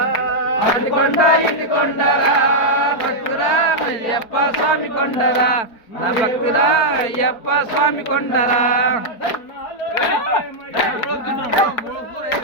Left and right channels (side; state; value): right; late; 4.4 ms